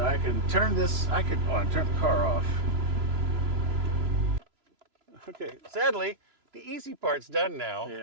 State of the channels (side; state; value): left; late; 3.0 ms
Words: I can turn this, I can turn the car off. Okay, sadly, the easy part's done now.